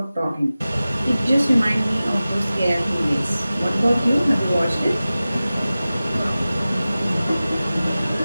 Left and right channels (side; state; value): both; inverted; correlation -0.96